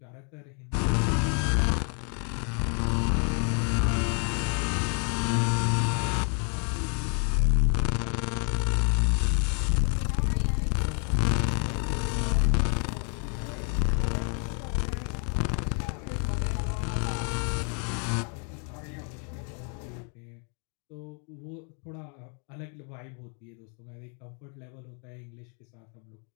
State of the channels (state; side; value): quieter; right; 39.3 dB